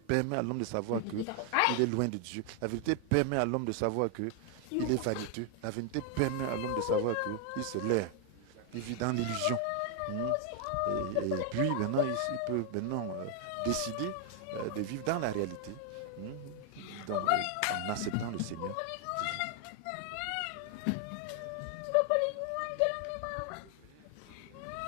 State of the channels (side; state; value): both; different; correlation 0.00